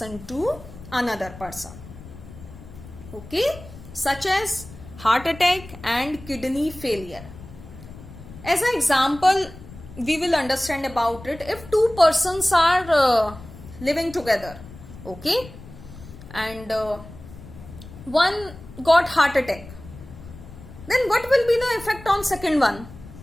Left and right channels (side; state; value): left; noise; rumble, 16 dB below the sound